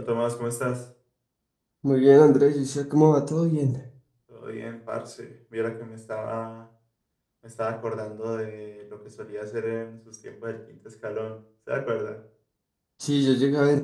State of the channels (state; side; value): identical; both; correlation 1.00